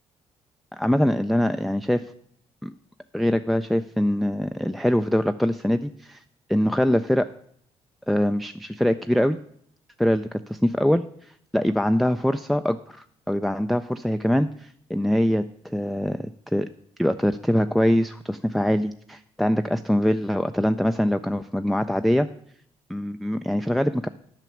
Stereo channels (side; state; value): both; normal; correlation 0.98